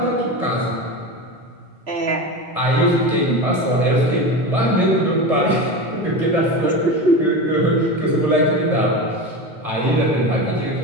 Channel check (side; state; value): both; normal; correlation 0.24